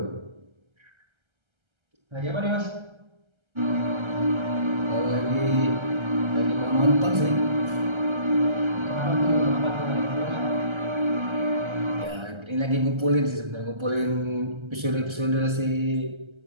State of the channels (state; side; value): late; left; 1.3 ms